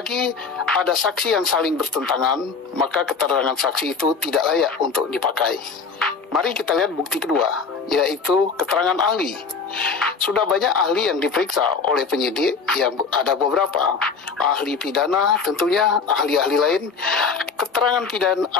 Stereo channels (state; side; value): quieter; right; 5.1 dB